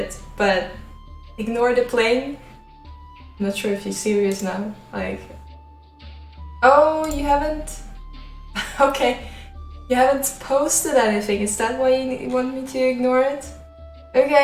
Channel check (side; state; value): both; identical; correlation 1.00